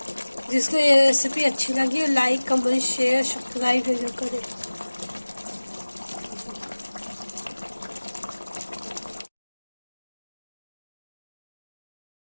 जिसको ये रेसिपी अच्छी लगी लाइक कमेंट शेयर सब्सक्राइब जरूर करें।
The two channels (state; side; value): inverted; both; correlation -1.00